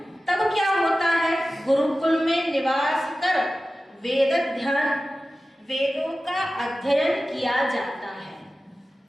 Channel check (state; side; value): normal; both; correlation 0.95